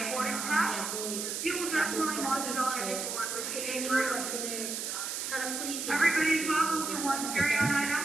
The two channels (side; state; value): right; noise; hiss, 3 dB below the sound